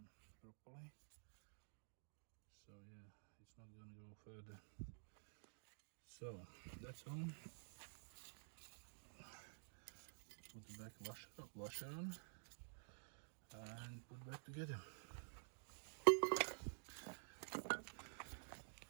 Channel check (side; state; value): left; silent; digital silence